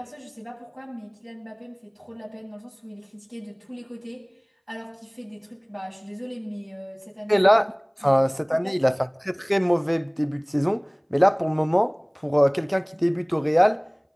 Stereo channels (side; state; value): both; identical; correlation 1.00